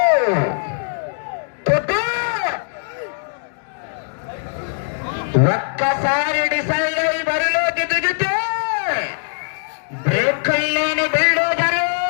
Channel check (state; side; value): silent; right; digital silence